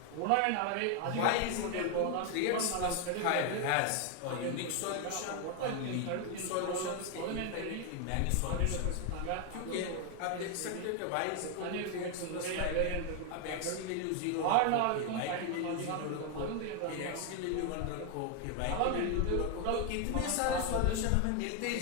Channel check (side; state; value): both; different; correlation 0.01